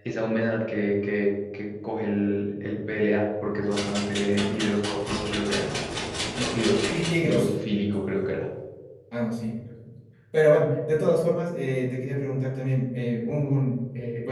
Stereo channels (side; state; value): both; identical; correlation 1.00